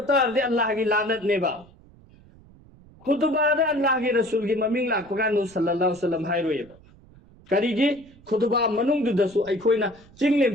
अर्दे अल्लाह की लानत नेबा खुतबादा अल्लाह के रसूल की ममिंग लाको कानु सल्लल्लाहु अलैहि वसल्लम हाइरोयबा करीगी खुतबा मनुंग दुदसु अइखोइना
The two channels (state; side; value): noise; right; rumble, 25 dB below the sound